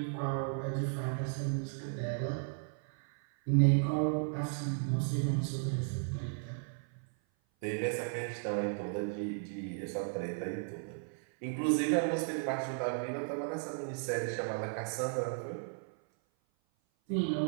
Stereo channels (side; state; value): left; silent; 54 dB below the other